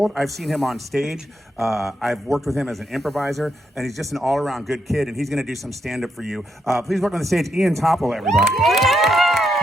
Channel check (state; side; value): normal; both; correlation 0.80